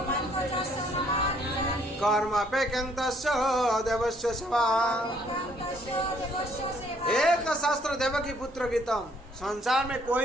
कर्म अपेक्षन्तस्य देवस्य सेवा। एक शास्त्र देवकी पुत्र गीतम। संसार में कोई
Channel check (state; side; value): normal; both; correlation 0.64